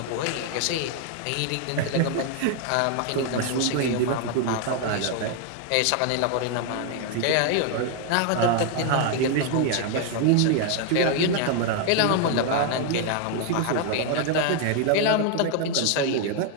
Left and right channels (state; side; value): different; both; correlation 0.00